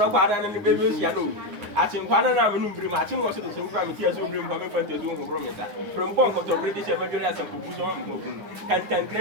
and the baby yellow. Atin kwana na menu brim atin wo so de so brim ti aso brim kwa me fante zo ngo brom meta from bon ko to british emergency as ko so mo kan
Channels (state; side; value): late; left; 9.5 ms